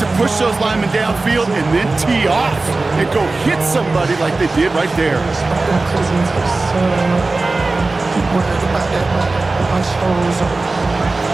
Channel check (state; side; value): quieter; left; 3.4 dB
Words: push those linemen downfield and then tee off and go hit somebody like they did right there.